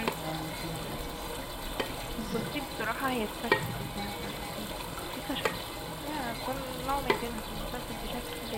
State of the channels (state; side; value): identical; both; correlation 1.00